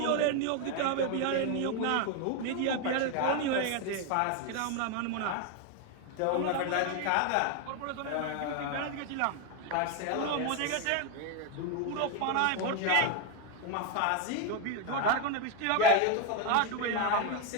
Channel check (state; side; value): different; both; correlation 0.02